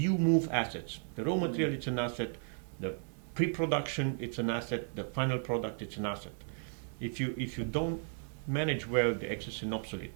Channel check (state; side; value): silent; left; 55 dB below the other